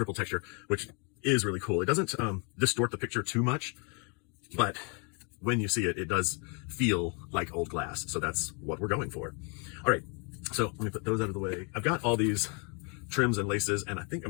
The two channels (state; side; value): quieter; right; 35.6 dB